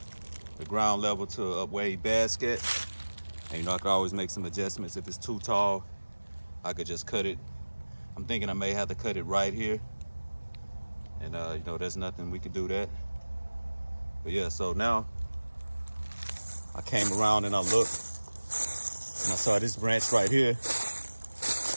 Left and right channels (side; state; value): both; inverted; correlation -1.00